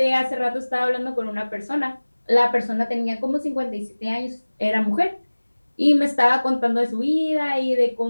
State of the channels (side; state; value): both; inverted; correlation -1.00